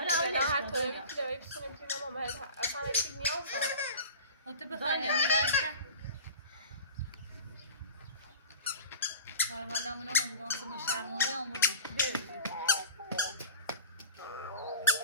هر طوری که داری بتونیم ما باید اصلا هیچ نیاز تو بخوای می‌رسه حالا منو میگم که ما شرمنده آموزش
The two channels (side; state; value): both; inverted; correlation -0.37